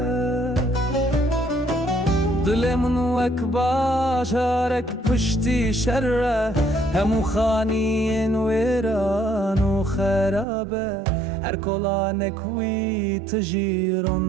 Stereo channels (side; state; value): left; drops out; at 10.5 s